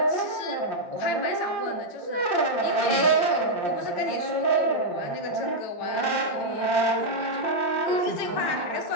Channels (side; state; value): right; late; 8.7 ms